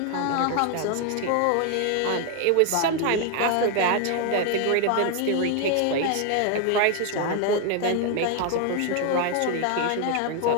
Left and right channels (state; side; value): different; both; correlation 0.01